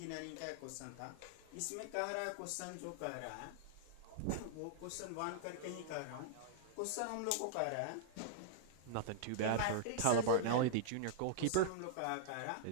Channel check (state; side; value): different; both; correlation -0.01